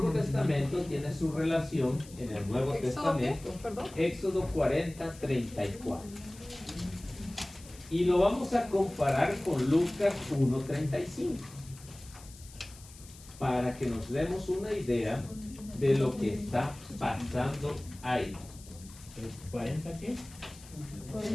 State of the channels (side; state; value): left; noise; hiss, 20 dB below the sound